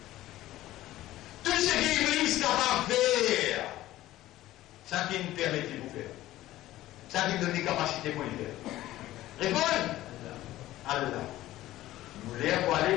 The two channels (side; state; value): right; quieter; 15.3 dB